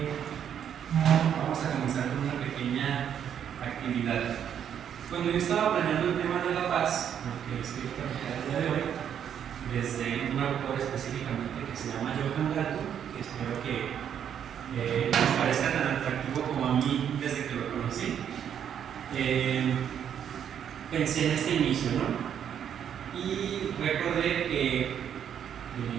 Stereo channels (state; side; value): quieter; left; 8.9 dB